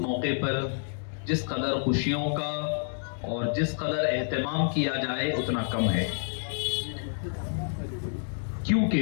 موقع پر جس قدر خوشیوں کا اور جس قدر اہتمام کیا جائے اتنا کم ہے،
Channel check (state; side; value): silent; right; 59 dB below the other